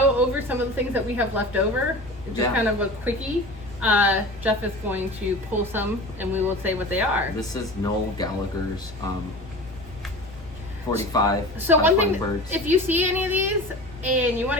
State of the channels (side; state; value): both; normal; correlation 0.35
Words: over some of the things that we have left over, just Yeah. kind of a quickie. Jeff is going to pull some, and we will say what they are. This is Noel Gallagher's 45. So one thing, Birds. if you see any of these and you want